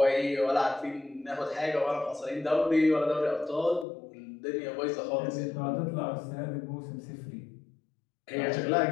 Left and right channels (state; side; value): drops out; right; at 3.9 s